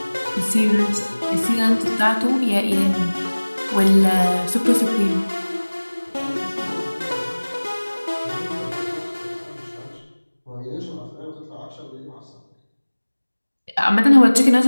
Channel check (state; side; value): inverted; both; correlation -1.00